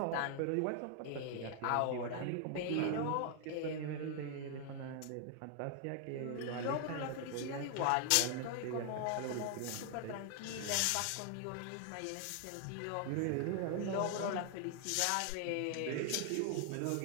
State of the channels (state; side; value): different; both; correlation 0.00